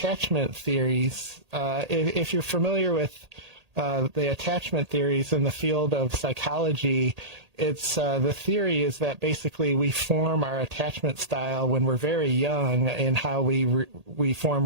theories. If you're familiar with the attachment theories in the field of psychology, it's the theory is that basically we form our attachment style when we're very young in how we form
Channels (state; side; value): late; left; 1.8 ms